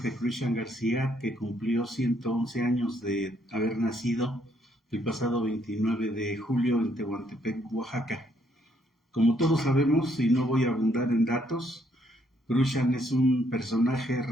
Cruixan García, que cumplió 111 años de haber nacido el pasado 29 de julio en Tehuantepec, Oaxaca. Como todos sabemos, y no voy a abundar en datos, Cruixan es un personaje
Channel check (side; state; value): both; normal; correlation 0.71